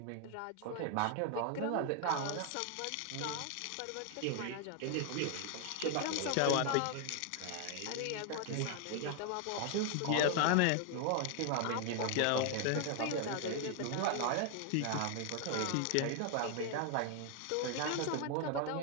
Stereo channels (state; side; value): different; both; correlation 0.00